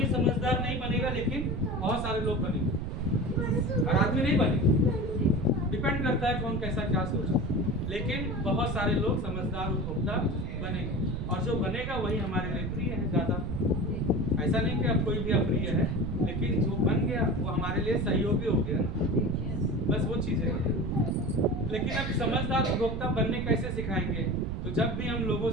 समझदार नहीं बनेगा, लेकिन बहुत सारे लोग बनेंगे। हर आदमी नहीं बनेगा, डिपेंड करता है कौन कैसा क्या सोचा, लेकिन बहुत सारे लोग समझदार उपभोक्ता बनेंगे। और जो बनेगा वही हमारे लिए प्रिय है ज्यादा। ऐसा नहीं कि अब कोई भी अप्रिय है, लेकिन जो बन गया वो हमारे लिए सहयोगी हो गया ना। बस वो चीजें हैं। लेकिन अब समझदार उपभोक्ता बनने कैसे सिखाएंगे? तो जब भी हम लोगों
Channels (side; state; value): right; noise; rumble, 4 dB below the sound